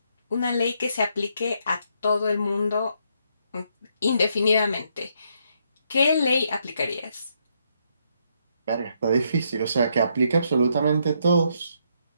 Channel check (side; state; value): both; inverted; correlation -0.75